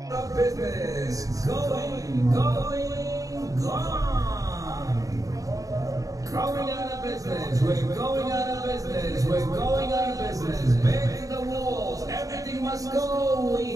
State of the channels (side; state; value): left; late; 0.17 ms